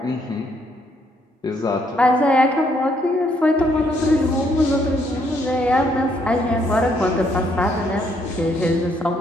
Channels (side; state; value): both; normal; correlation 0.71